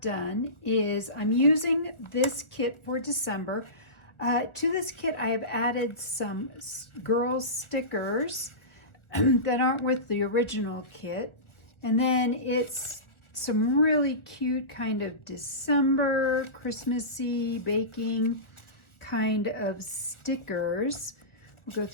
is I'm using this kit for December. To this kit I have added some girls stickers that aren't with the original kit. And then it's some really cute kind of December, Christmassy, baking kind of stickers. We'll go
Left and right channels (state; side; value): late; right; 1.2 ms